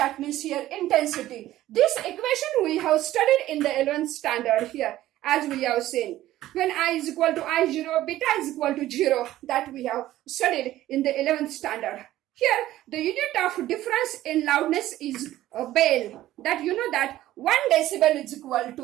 means here intensity. This equation we have studied in the 11th standard here, as we have seen. When I is equal to I0, beta is equal to 0, that we have studied in the 11th standard. Here, the unit of difference in loudness is a bell. That you know that 1 decibel is equal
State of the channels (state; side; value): quieter; left; 14.5 dB